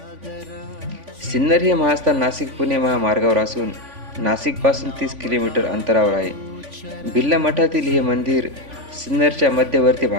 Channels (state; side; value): late; left; 3.5 ms